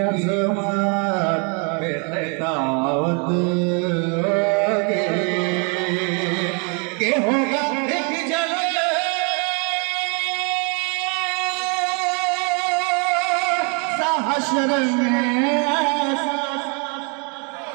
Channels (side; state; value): left; quieter; 35.9 dB